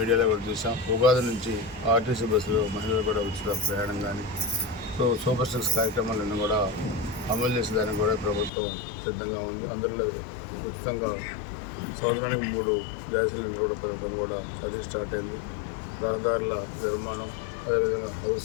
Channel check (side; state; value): right; drops out; at 8.5 s